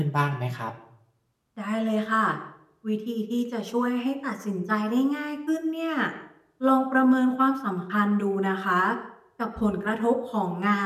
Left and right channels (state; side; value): identical; both; correlation 1.00